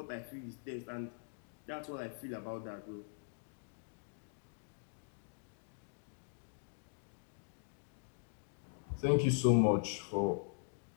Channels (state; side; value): silent; right; digital silence